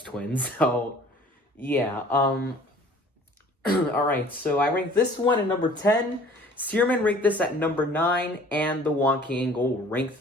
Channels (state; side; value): normal; both; correlation 0.51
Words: Twin. So, yeah. Alright, so I ranked this one at number 10. Searman ranked this at number 9. And the Wonky Angle ranked